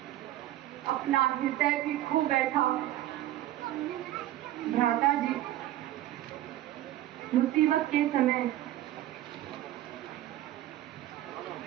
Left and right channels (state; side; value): quieter; left; 14.0 dB